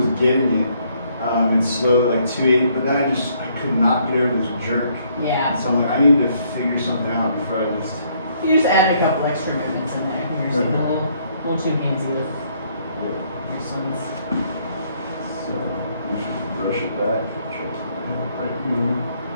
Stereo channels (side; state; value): both; inverted; correlation -0.68